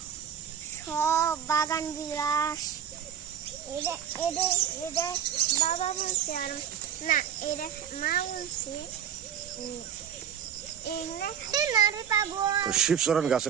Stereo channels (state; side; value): quieter; left; 8.8 dB